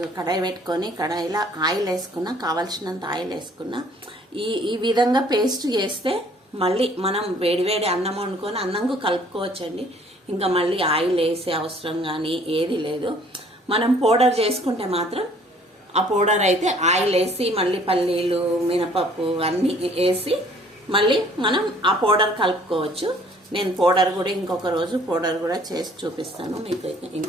కడాయి పెట్టుకొని కడాయిలో ఆయిల్ వేసుకున్నా, కావాల్సినంత ఆయిల్ వేసుకున్నా. ఈ విధంగా పేస్ట్ చేస్తే మళ్ళీ మనం వేడివేడి అన్నం వండుకొని అన్నంకు కలుపుకోవచ్చండి. ఇంకా మళ్ళీ ఆయిల్ వేసే అవసరం కానీ ఏది లేదు. మనం పౌడర్ చేసుకుంటే మాత్రం ఆ పౌడర్ అయితే ఆయిల్ వేసి మళ్ళీ పల్లీలు, మినపప్పు అన్నీ వేసి మళ్ళీ మనం ఆ పౌడర్ కలుపుకోవచ్చు. నేను పౌడర్ కూడా ఇంకొక రోజు పౌడర్ కూడా చేసి చూపిస్తాను మీకు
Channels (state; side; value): normal; both; correlation 0.57